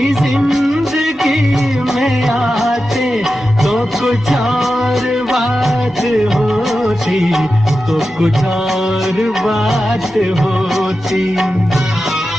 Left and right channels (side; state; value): both; normal; correlation 0.92